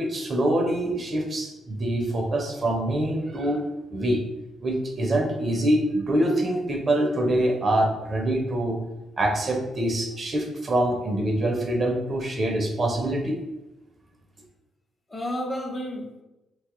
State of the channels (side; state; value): both; normal; correlation 0.81